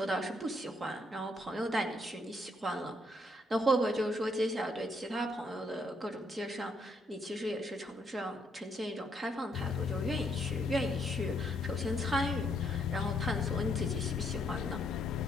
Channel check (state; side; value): normal; both; correlation 0.72